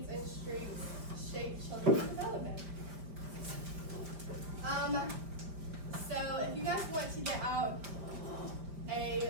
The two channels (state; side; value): late; left; 5.1 ms